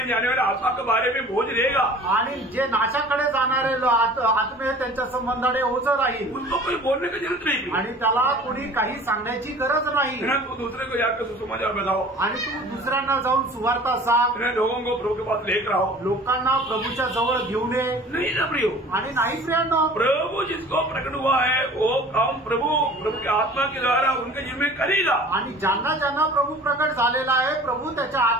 जाने वाले आत्मा के बारे में बोझ रहेगा आणि जे नाशाकडे जाणारे आत्मे त्यांच्या संबंधाने ओझ राहील। उनको कोई बोलने की जरूरत नहीं आणि त्याला कोणी काही सांगण्याची गरज नाही। तू दूसरे को जाकर सुसमाचार बताओ आणि तू दुसऱ्यांना जाऊन सुवार्ता सांग। लोगों को प्रभु के पास लेकर आओ, लोकांना प्रभूच्या जवळ घेऊन ये। नहीं ना प्रियो, आणि नाही प्रियांनो, प्रभु जिसको प्रकट हुआ है वो काम प्रभु के आत्मा के द्वारा उनके जीवन में करेगा। आणि ज्यांना ज्यांना प्रभु प्रकट झालेला आहे, प्रभु त्याच्या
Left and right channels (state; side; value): normal; both; correlation 0.45